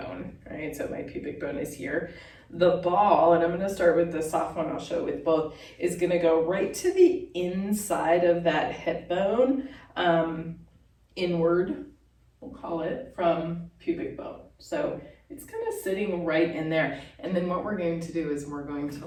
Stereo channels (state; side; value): identical; both; correlation 1.00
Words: right? So my pubic bone is here. The ball, and I'm gonna start with the soft one, I'll show it with both, is gonna go right to the inside of that hip bone, inward, we'll call it, from pubic bone. So it's kind of sitting right in there. And then what we're going to do is we're going to